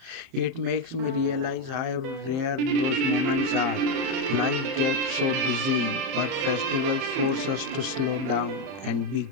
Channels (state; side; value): late; left; 30 ms